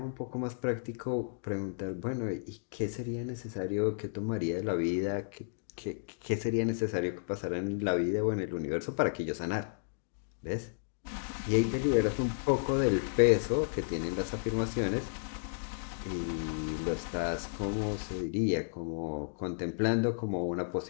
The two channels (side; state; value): right; silent; digital silence